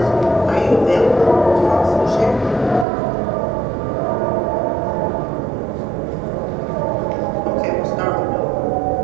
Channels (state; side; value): drops out; left; at 2.9 s